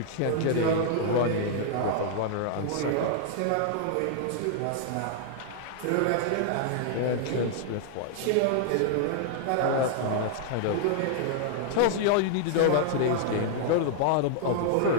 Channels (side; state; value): both; different; correlation -0.01